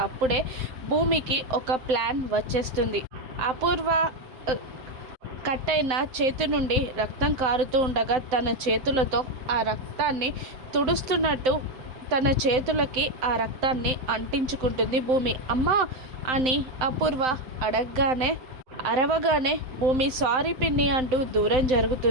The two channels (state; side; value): late; left; 7.7 ms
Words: అప్పుడే భూమికి ఒక ప్లాన్ వచ్చేస్తుంది. అపూర్వ కట్ అయిన చేతి నుండి రక్తం కారుతూ ఉండగా తన చేతులతో ఆ రక్తాన్ని తుడుస్తున్నట్టు తన చేతులకి ఆ రక్తాన్ని అంటించుకుంటుంది భూమి. అమ్మా అని అపూర్వ అరవగానే భూమి సారీ పిన్ని అంటూ దూరం